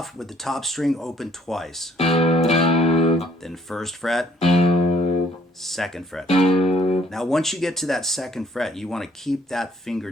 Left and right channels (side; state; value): both; normal; correlation 0.62